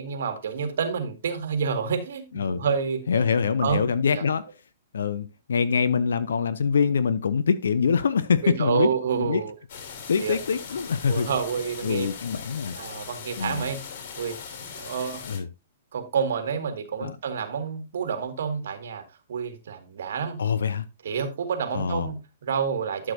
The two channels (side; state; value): both; inverted; correlation -0.69